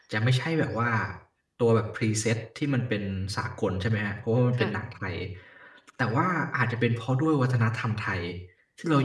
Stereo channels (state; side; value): identical; both; correlation 1.00